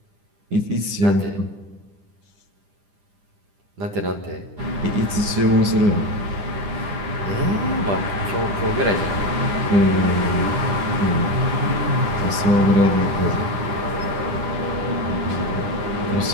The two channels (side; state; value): left; late; 10 ms